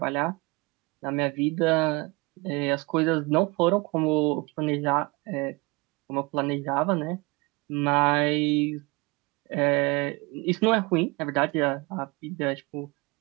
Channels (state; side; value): quieter; left; 26.5 dB